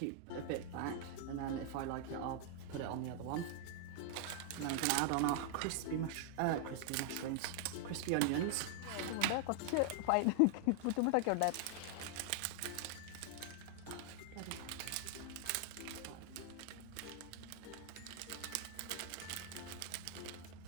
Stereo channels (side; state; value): both; different; correlation 0.00